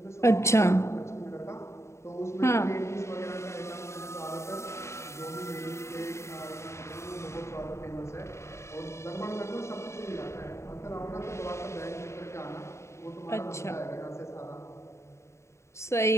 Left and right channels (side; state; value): right; late; 0.14 ms